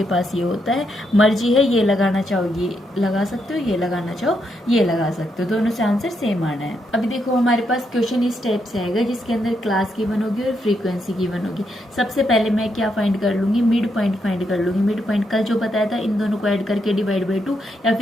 पास ये होता है, मर्जी है, ये लगाना चाहो ये लगा सकते हो, ये लगाना चाहो ये लगा सकते हो, दोनों से आंसर सेम आना है। अभी देखो हमारे पास क्वेश्चन इस टाइप से आएगा जिसके अंदर क्लास की वन होगी और फ्रीक्वेंसी की वन होगी। सबसे पहले मैं क्या फाइंड कर लूंगी, मिड पॉइंट फाइंड कर लूंगी। मिड पॉइंट कल जो बताया था, इन दोनों को ऐड करके डिवाइड बाई 2 या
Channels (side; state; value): both; normal; correlation 0.80